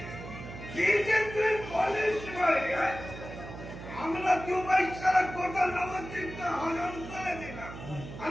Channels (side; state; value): right; noise; hum, 12 dB below the sound